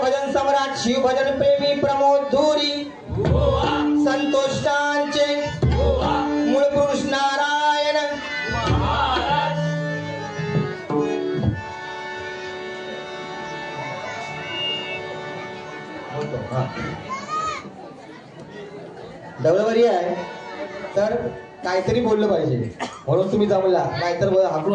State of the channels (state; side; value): identical; both; correlation 1.00